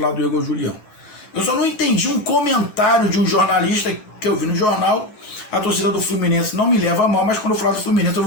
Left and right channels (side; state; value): right; late; 10 ms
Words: do Igor Julião. Eu só não entendi um comentário de um jornalista que eu vi no jornal. A torcida do Fluminense não me leva a mal, mas quando eu falar do Fluminense eu